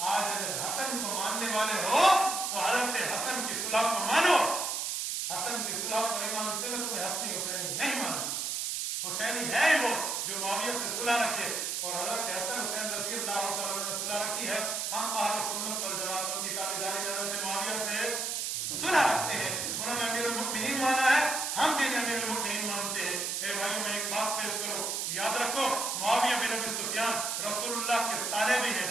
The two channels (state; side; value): noise; right; hiss, 1 dB below the sound